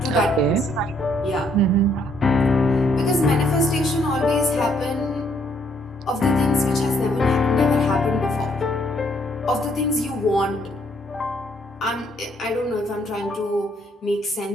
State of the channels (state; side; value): normal; both; correlation 0.68